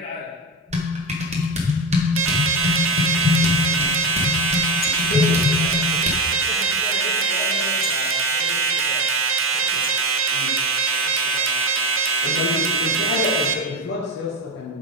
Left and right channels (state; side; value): normal; both; correlation 0.18